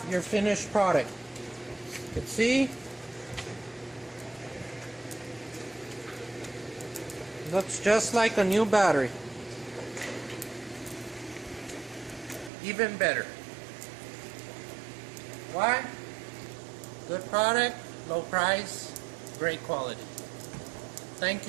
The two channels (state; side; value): drops out; left; at 12.5 s